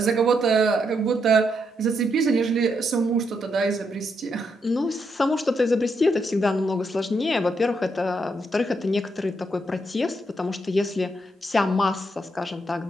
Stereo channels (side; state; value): both; normal; correlation 0.79